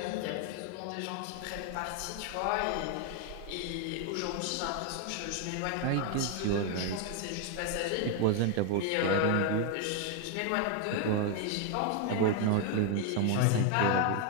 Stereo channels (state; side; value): different; both; correlation 0.01